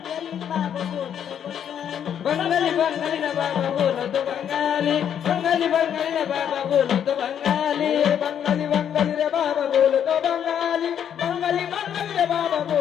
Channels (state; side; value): quieter; right; 9.0 dB